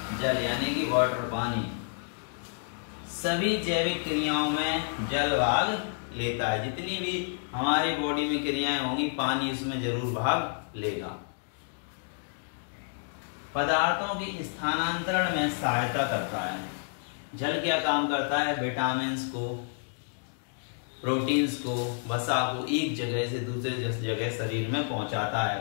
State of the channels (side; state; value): right; silent; digital silence